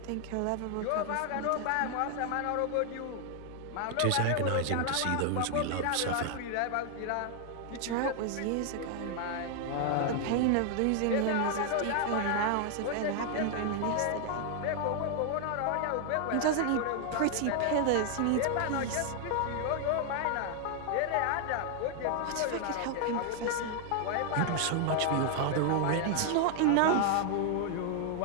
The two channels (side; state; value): both; different; correlation 0.00